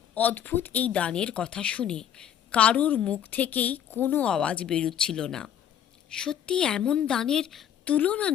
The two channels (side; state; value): right; quieter; 9.7 dB